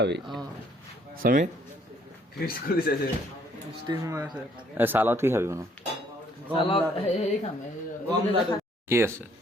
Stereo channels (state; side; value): normal; both; correlation 0.64